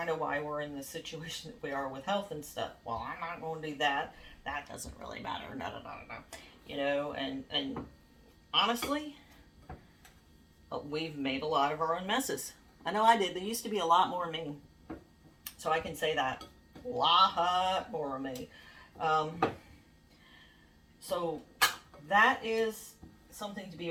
of why we're in the situation that we are with health and stuff. Well, I'm not going to do that. That doesn't really matter. No. You know, and honestly, we've made a lot of our own messes. I know I did. There used to be a lot more of me. So I can say that. A lot more of me. So that is something to be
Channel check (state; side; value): identical; both; correlation 1.00